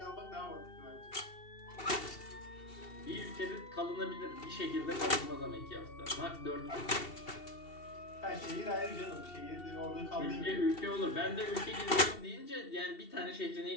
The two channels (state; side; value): late; right; 2.7 ms